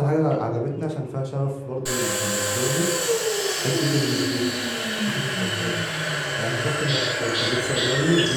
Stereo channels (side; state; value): both; identical; correlation 1.00